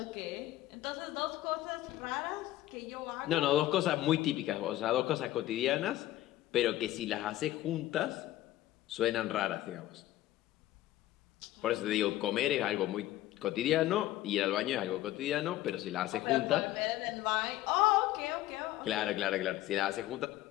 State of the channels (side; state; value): right; quieter; 14.9 dB